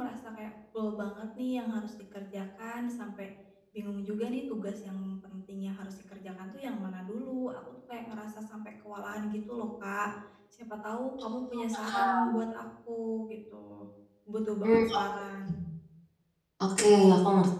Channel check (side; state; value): both; identical; correlation 1.00